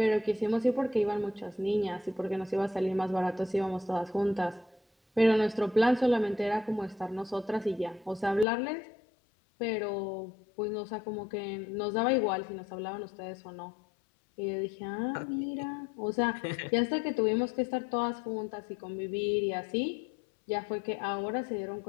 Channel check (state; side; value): drops out; right; at 8.5 s